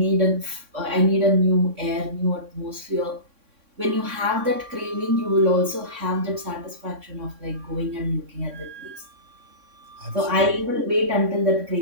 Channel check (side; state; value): left; late; 3.6 ms